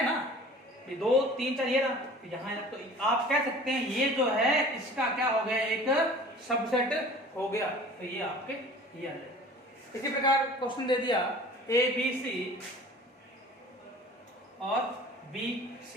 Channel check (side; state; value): both; normal; correlation 0.45